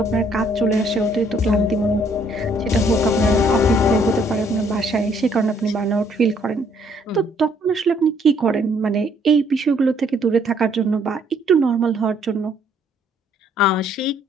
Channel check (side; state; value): both; normal; correlation 0.65